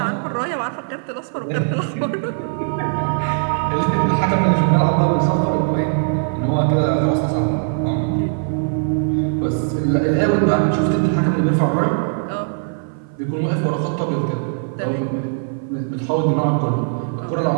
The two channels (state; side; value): silent; left; 60 dB below the other